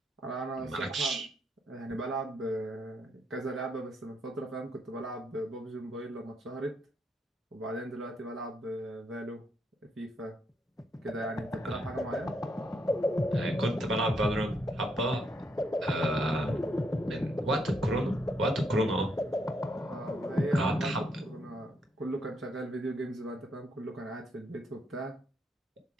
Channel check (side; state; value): both; normal; correlation 0.76